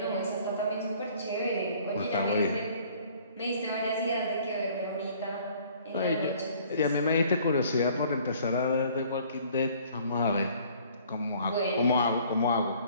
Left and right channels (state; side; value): inverted; both; correlation -0.56